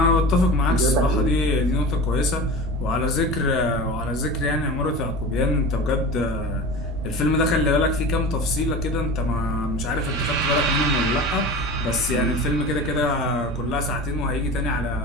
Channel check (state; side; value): noise; right; rumble, 10 dB below the sound